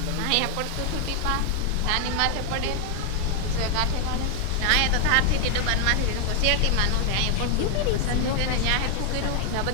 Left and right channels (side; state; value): both; different; correlation 0.00